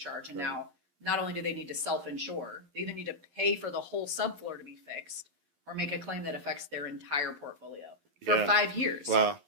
And now not only do they need to self-insure, they either need to pay for the whole subfloor to be fixed or make a claim that affects their entire portfolio for 5 years. Wow.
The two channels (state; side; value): late; left; 11 ms